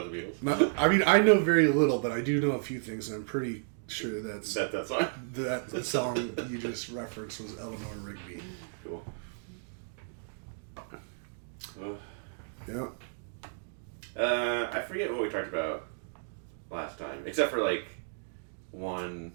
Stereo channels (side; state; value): left; silent; digital silence